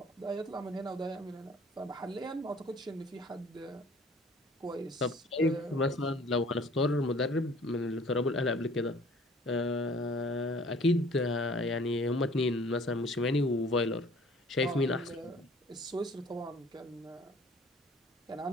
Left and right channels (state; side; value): normal; both; correlation 0.52